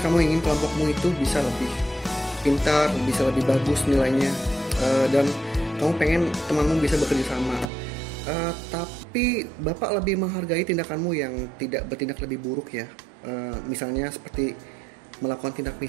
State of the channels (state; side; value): drops out; left; at 7.7 s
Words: kamu ingin kelompokmu itu bisa lebih pintar, bisa lebih bagus nilainya, dan kamu pengen temanmu bisa bekerja sama. Tapi bapak lebih menghargai tindakanmu yang tidak bertindak lebih buruk ya. Misalnya seperti melakukan tindak